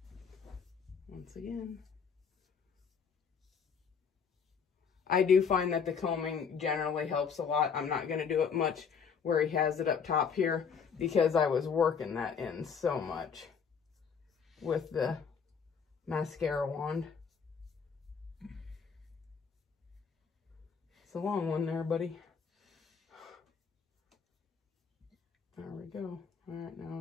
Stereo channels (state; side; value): quieter; right; 6.3 dB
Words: Once again. I do find that the combing generally helps a lot. I'm not going to do it much where he has it up top here because I was working that in so much with the mascara wand. It's a long one there, buddy. There we go. All right,